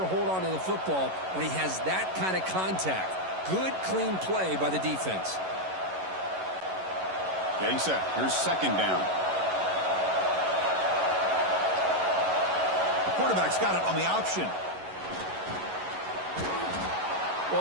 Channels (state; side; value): late; left; 11 ms